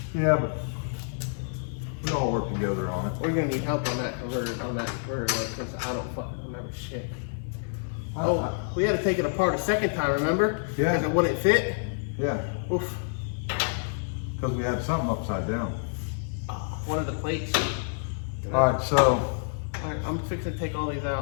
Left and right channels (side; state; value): right; silent; digital silence